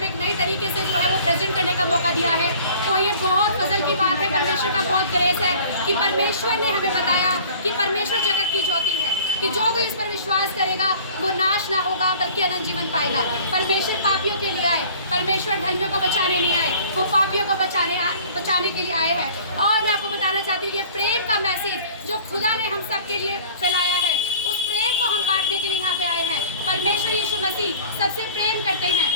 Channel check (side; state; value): both; inverted; correlation -0.47